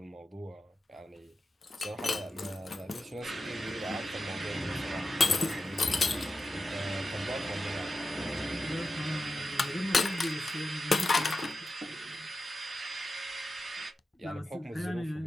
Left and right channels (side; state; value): both; normal; correlation 0.91